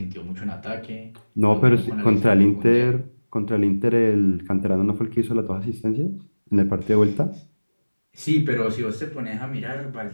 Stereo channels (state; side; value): inverted; both; correlation -1.00